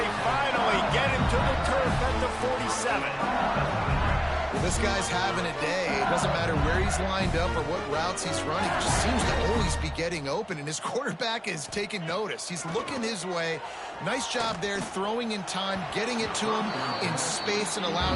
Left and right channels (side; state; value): both; identical; correlation 1.00